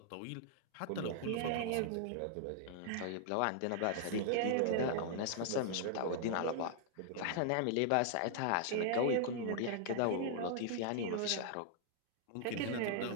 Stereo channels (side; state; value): both; different; correlation -0.01